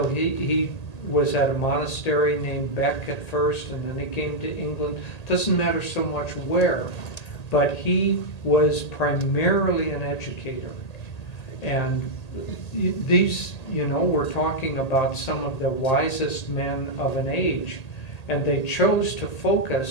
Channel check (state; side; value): late; right; 1.8 ms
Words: he was at a monastery named Beck at first, and then he came to England. Doesn't matter so much where, but he was primarily an educator. And these, you know, we're talking about some of the wisest men of an age, and they chose to